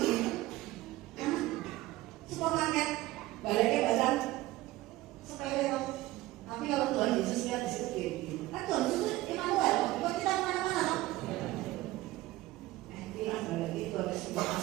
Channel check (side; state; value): left; quieter; 17.5 dB